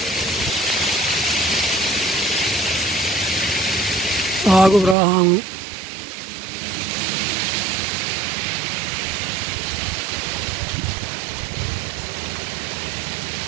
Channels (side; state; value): left; drops out; at 5.0 s